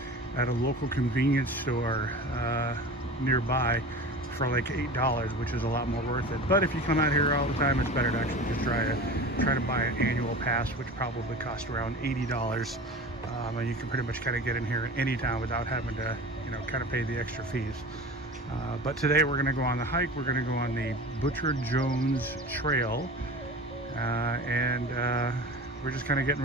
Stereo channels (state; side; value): normal; both; correlation 0.35